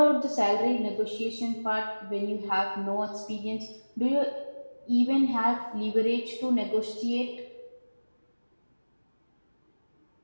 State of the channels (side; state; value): both; inverted; correlation -1.00